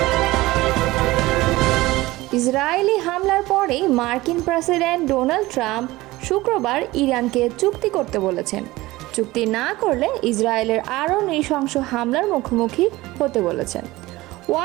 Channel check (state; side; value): quieter; left; 19.1 dB